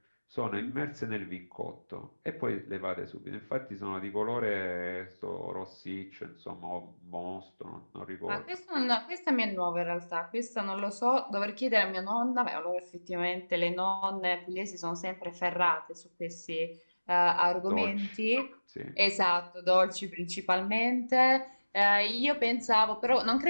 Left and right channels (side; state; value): both; inverted; correlation -1.00